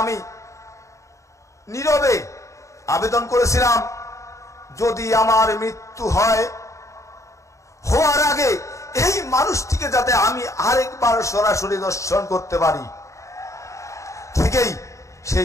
আমি নীরবে আবেদন করেছিলাম, যদি আমার মৃত্যু হয়, হওয়ার আগে এই মানুষটিকে যাতে আমি আরেকবার সরাসরি দর্শন করতে পারি। ঠিকই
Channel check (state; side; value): late; right; 0.15 ms